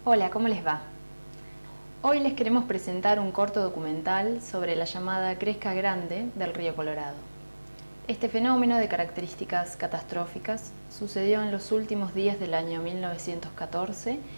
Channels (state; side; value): inverted; both; correlation -1.00